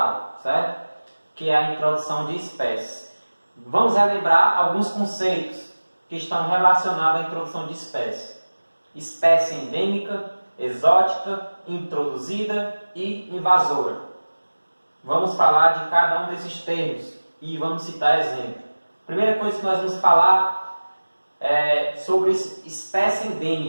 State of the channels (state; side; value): inverted; both; correlation -1.00